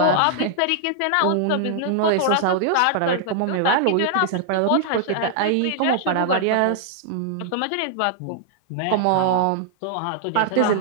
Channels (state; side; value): different; both; correlation -0.01